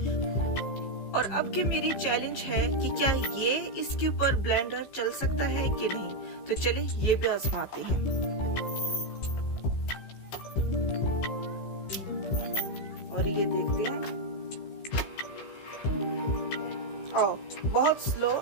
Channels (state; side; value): late; right; 15 ms